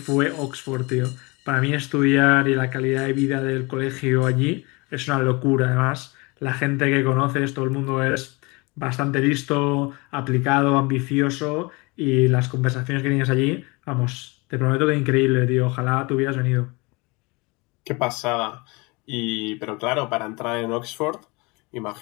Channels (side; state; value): right; quieter; 26.7 dB